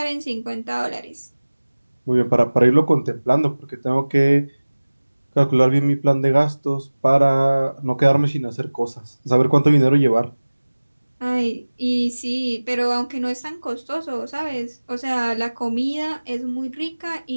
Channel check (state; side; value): inverted; both; correlation -1.00